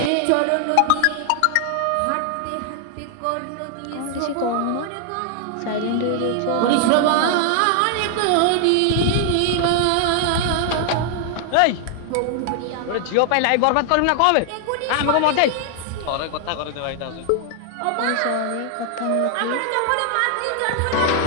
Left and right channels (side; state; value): both; different; correlation 0.00